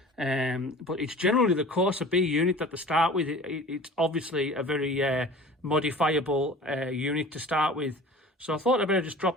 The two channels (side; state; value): both; normal; correlation 0.41